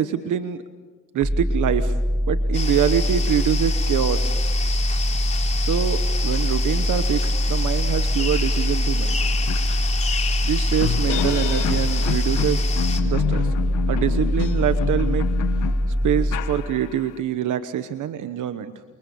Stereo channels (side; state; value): both; normal; correlation 0.58